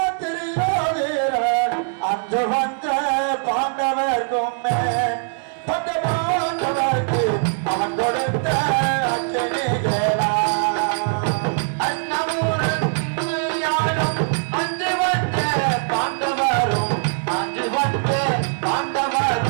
திரியோதீரன் அஞ்சு வந்த பாண்டவர்க்கும் பஞ்ச பாண்டவர்க்கு அவன் கொடுத்த அச்சனிகளா அன்னமூரத்தையாளும் அஞ்சு வந்த பாண்டவரும் அஞ்சு வந்த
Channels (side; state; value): left; silent; digital silence